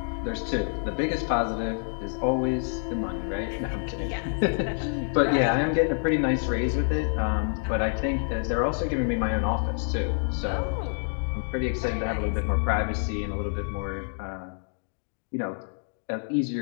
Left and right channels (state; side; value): silent; right; digital silence